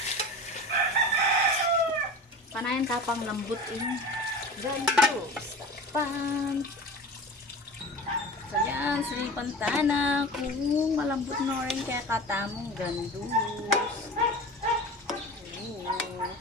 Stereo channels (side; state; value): both; normal; correlation 0.34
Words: Panayan tapang lambot ini. Gandos. Pan. So yan, silipan tana. Kung malambot na rin kaya katamong gandos.